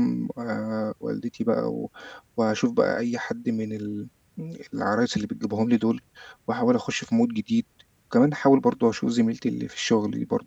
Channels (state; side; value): identical; both; correlation 1.00